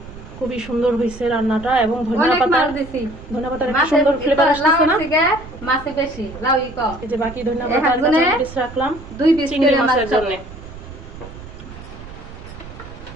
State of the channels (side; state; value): right; noise; rumble, 15 dB below the sound